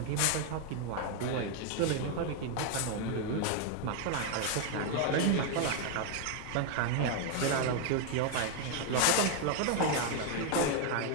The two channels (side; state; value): both; different; correlation 0.00